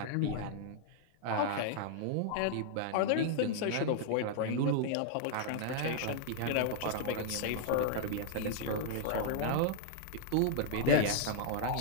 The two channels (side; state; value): both; different; correlation -0.01